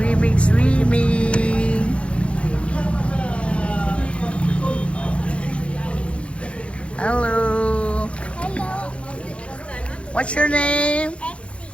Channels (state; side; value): late; right; 0.060 ms